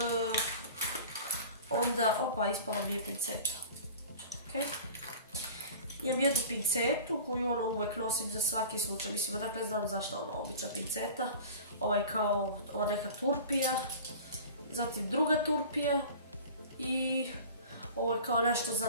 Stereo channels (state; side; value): inverted; both; correlation -0.40